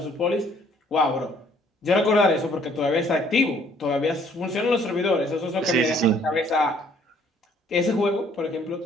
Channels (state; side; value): normal; both; correlation 0.61